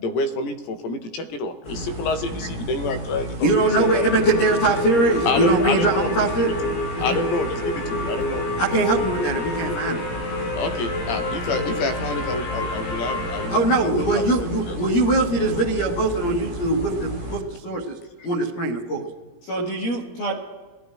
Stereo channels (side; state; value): right; late; 17 ms